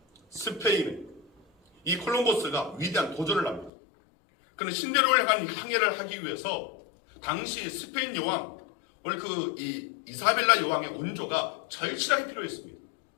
스페인의 이 콜럼버스가 위대한 도전을 합니다. 그는 신대륙을 향한 항해를 하기 위해서 당시 스페인 여왕, 오늘 이 이사벨라 여왕의 온조가 절실하게 필요했습니다.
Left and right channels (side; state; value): right; drops out; at 3.7 s